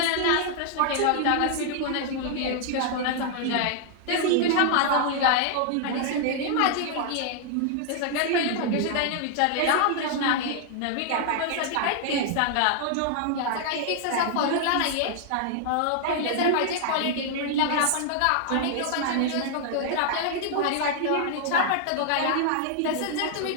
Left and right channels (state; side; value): different; both; correlation 0.00